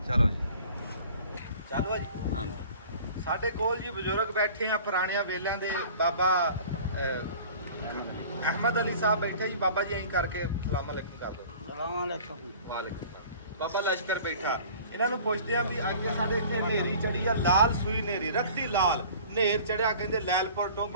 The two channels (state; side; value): inverted; both; correlation -0.45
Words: ਚਲੋ ਜੀ, ਚਲੋ ਜੀ। ਹਾਂ, ਸਾਡੇ ਕੋਲ ਜੀ ਬਜ਼ੁਰਗ ਬੈਠੇ ਆ ਪੁਰਾਣਿਆਂ ਵੇਲਿਆਂ ਦੇ। ਬਾਬਾ ਅਹਿਮਦ ਅਲੀ ਸਾਹਿਬ ਬੈਠੇ ਜੀ। ਬਾਬਾ ਜੀ ਐਂ ਕਰਕੇ ਸਲਾਮ ਅਲੈਕੁਮ ਕਰ ਦਿਓ। ਵਾਲੇਕੁਮ ਬਾਬਾ ਲਸ਼ਕਰ ਬੈਠਾ। ਇਹਨਾਂ ਨੂੰ ਪੁੱਛਦੇ ਆ ਵੀ ਅੱਗੇ ਸਾਡੇ ਇੱਥੇ ਹਨੇਰੀ ਚੜੀ ਆ, ਲਾਲ ਸੂਈ ਹਨੇਰੀ, ਰੱਤੀ ਲਾਲ ਹਨੇਰ ਚੜਿਆ। ਕਹਿੰਦੇ ਲੈਲਪੁਰ